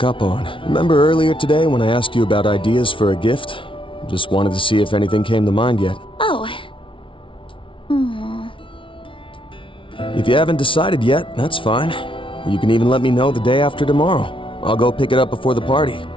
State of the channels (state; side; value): late; right; 0.25 ms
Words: up on. Remember earlier today when I asked you about ideas for a gift? Just wanted to see if anything came to mind yet. Oh. If you haven't decided yet, that's fine. You can even let me know the day after tomorrow. I'll go pick it up before the party.